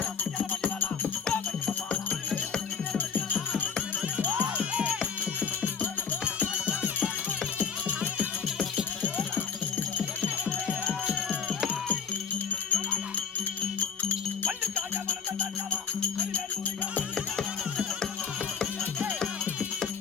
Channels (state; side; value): quieter; right; 6.4 dB